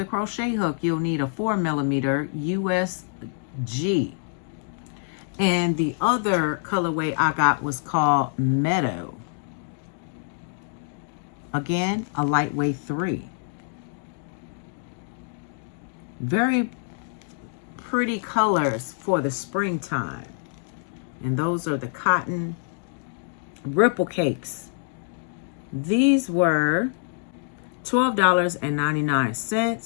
crochet hook, you'll need a 4mm USG. And the other colorway I got was called Meadow. Again, a lightweight 3. Very pretty colors for the springtime. And those are the cotton ripple cakes. These were $12.99.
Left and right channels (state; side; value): silent; right; digital silence